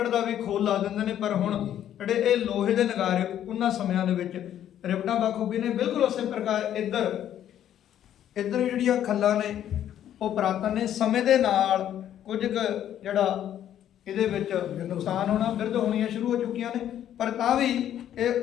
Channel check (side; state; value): right; quieter; 10.8 dB